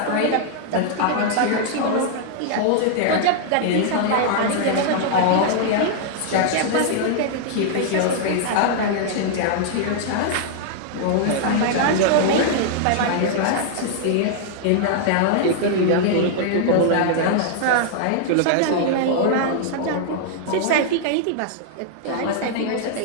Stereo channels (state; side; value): different; both; correlation -0.01